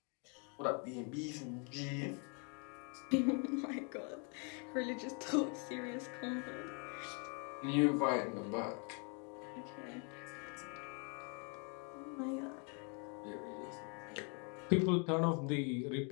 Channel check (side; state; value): right; quieter; 37.0 dB